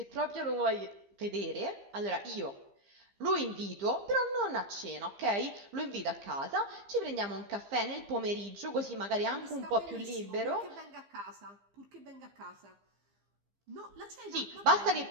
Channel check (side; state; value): left; late; 15 ms